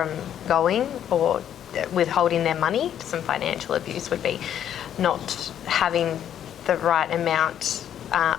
going, or withholding their money. Some financial abuse would be not having the right amount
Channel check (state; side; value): quieter; right; 10.0 dB